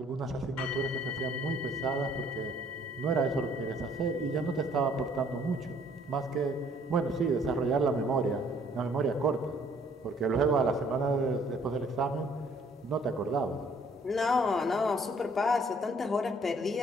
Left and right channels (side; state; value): both; normal; correlation 0.60